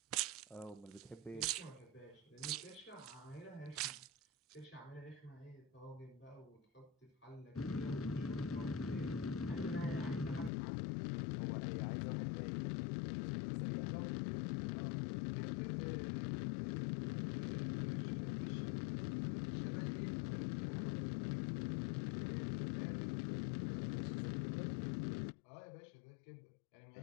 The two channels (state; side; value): drops out; right; at 10.5 s